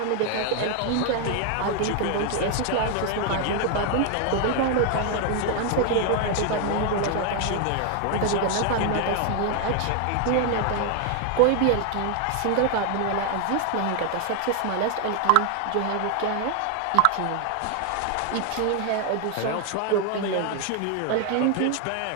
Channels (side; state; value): both; different; correlation 0.00